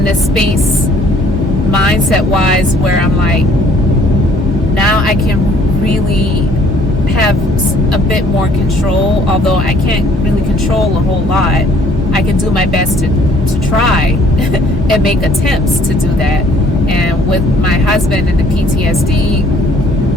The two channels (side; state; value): both; normal; correlation 0.60